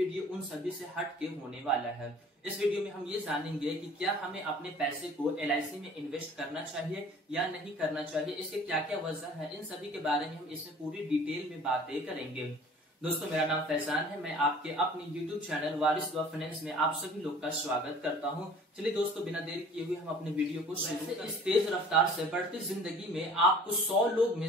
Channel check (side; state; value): both; normal; correlation 0.48